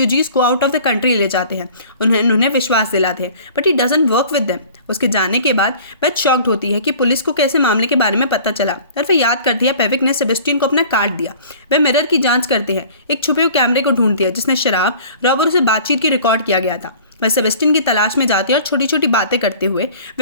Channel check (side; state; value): both; inverted; correlation -0.46